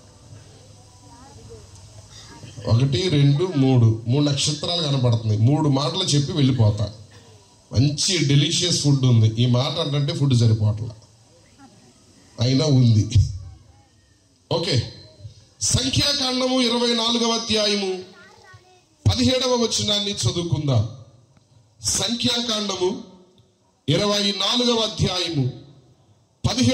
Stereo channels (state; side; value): identical; both; correlation 1.00